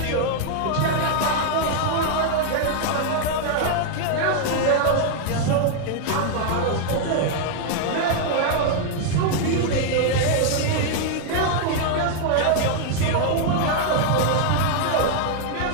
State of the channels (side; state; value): both; different; correlation 0.00